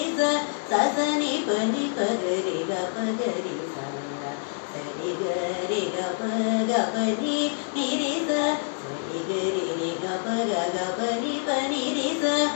సని పని పగరి గ పగరి సరి గరి గ పగ పని నిరి సరి గరి రి గ పగ గ పని పని రి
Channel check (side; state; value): right; silent; 61 dB below the other